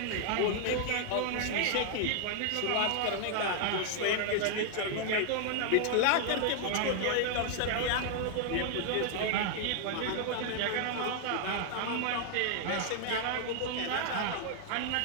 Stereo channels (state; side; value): different; both; correlation 0.00